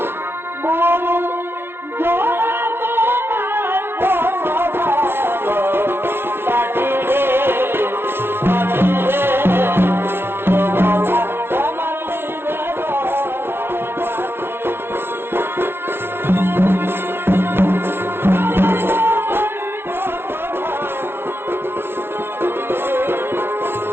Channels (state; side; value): late; left; 0.11 ms